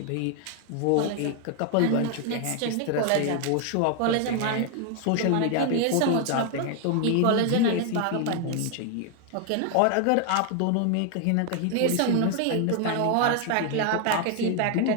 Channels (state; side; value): different; both; correlation 0.00